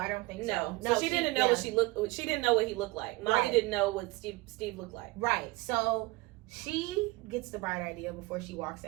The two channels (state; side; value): quieter; left; 22.5 dB